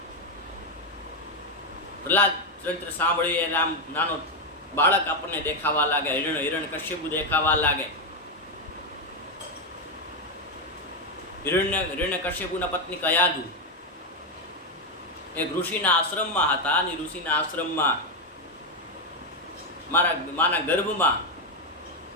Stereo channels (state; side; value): normal; both; correlation 0.05